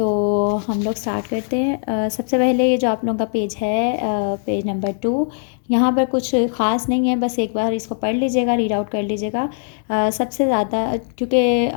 हम लोग स्टार्ट करते हैं। सबसे पहले ये जो आप लोगों का पेज है, पेज नंबर 2, यहाँ पर कुछ ख़ास नहीं है, बस एक बार इसको पढ़ लीजिएगा, रीड आउट कर लीजिएगा। सबसे ज़्यादा क्योंकि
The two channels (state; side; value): silent; right; digital silence